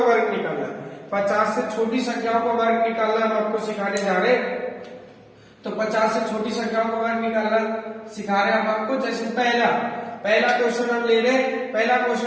वर्ग निकालना। 50 से छोटी संख्याओं का वर्ग निकालना हम आपको सिखाने जा रहे हैं। तो 50 से छोटी संख्याओं का वर्ग निकालना सिखा रहे हैं हम आपको। जैसे पहला क्वेश्चन हम ले रहे हैं, पहला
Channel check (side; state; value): both; identical; correlation 1.00